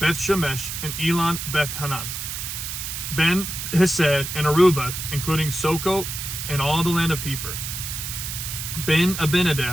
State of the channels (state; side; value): noise; right; hiss, 5 dB below the sound